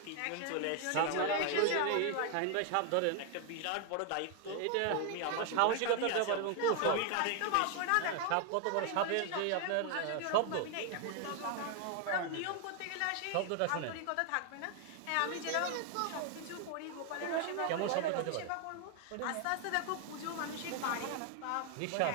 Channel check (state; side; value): different; both; correlation 0.00